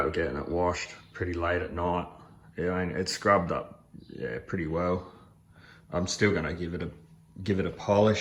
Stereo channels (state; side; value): identical; both; correlation 1.00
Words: getting it washed pretty late at night. Yeah, it's scrubbed up, yeah, pretty well. I'm still gonna give it a